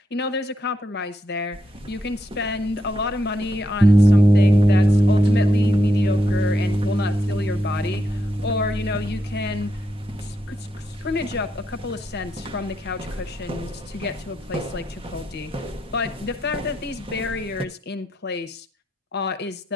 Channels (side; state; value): both; normal; correlation 0.81